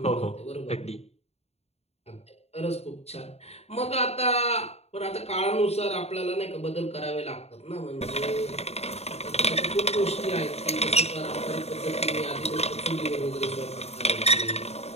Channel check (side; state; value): right; late; 0.30 ms